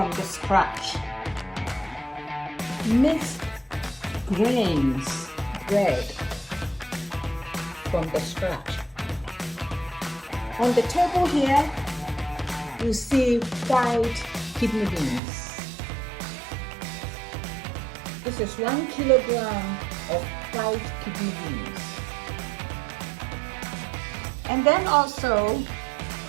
the scratch. Mixed grains bread from the scratch. On the table here, you see white kidney beans. This is 1 kilogram of white kidney beans. And then also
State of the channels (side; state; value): left; drops out; at 15.2 s